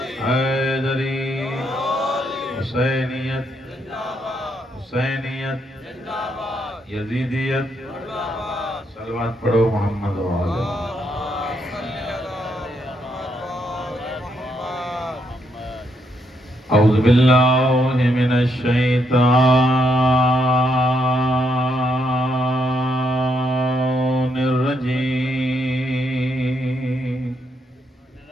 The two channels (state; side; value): normal; both; correlation 0.76